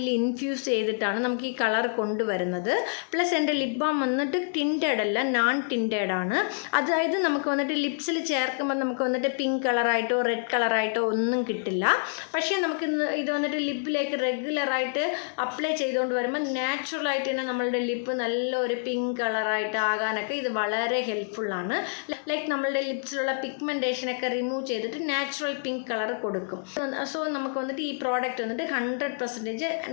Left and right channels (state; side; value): silent; right; digital silence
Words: ഇൻഫ്യൂസ് ചെയ്തിട്ടാണ് നമുക്ക് ഈ കളർ കൊണ്ടുവരുന്നത്. പ്ലസ് എൻ്റെ ലിപ് ബാം വന്നിട്ട് ടിൻറ്റഡ് അല്ല, നോൺ ടിൻറ്റഡ് ആണ്. അതായത് നമുക്ക് വന്നിട്ട് ലിപ്സിൽ ചേർക്കുമ്പോൾ നമുക്ക് വന്നിട്ട് പിങ്ക് കളറായിട്ടോ റെഡ് കളറായിട്ടോ ഒന്നും കിട്ടില്ല. പക്ഷേ നമുക്ക് ഇത് വന്നിട്ട് ലിപ്പിലേക്ക് റെഗുലറായിട്ട് അപ്ലൈ ചെയ്തുകൊണ്ട് വരുമ്പോൾ നാച്ചുറലായിട്ട് തന്നെ നമ്മളുടെ ലിപ്പ് നല്ലൊരു പിങ്ക് കളറായിട്ട് ആകാനൊക്കെ ഇത് വളരെ ഹെൽപ്ഫുള്ളാണ്. ലൈക്ക് നമ്മളുടെ ലിപ്സിലുള്ള പിഗ്മെൻറ്റേഷനൊക്കെ റിമൂവ് ചെയ്തിട്ട് നാച്ചുറൽ പിങ്ക് കളർ കൊടുക്കും. സോ നമുക്ക് വന്നിട്ട് ഈ പ്രോഡക്റ്റ് വന്നിട്ട് 100%